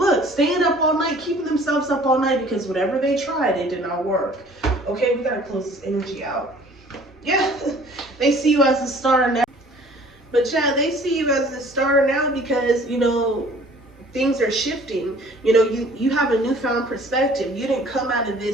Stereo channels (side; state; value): both; normal; correlation 0.52